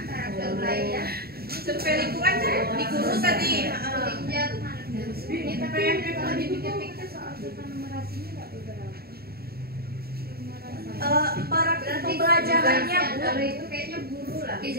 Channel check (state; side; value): late; left; 0.45 ms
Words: karakter belajar. Survei lingkungan kan di guru tadi. Ini tapi yang kalau dipikir-pikir soal numerasinya nggak beberapa. Para pembelajarannya Bu. Kalau itu kayaknya guru lah.